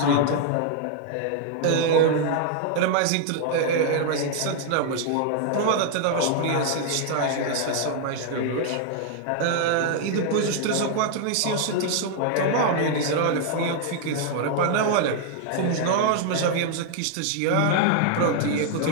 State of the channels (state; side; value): different; both; correlation 0.00